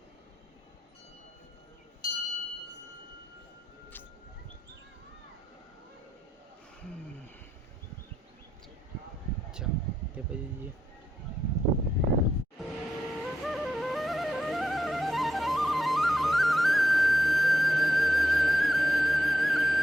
ચાલો તે પછી જઈએ.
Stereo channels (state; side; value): normal; both; correlation 0.82